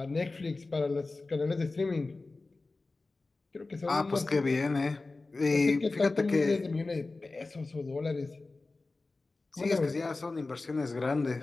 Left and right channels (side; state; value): right; quieter; 3.5 dB